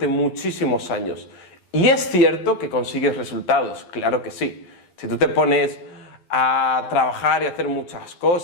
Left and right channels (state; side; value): late; right; 11 ms